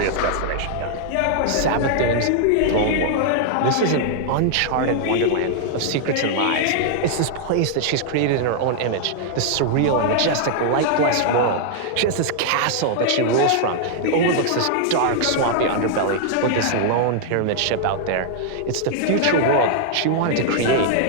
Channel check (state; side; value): different; both; correlation -0.01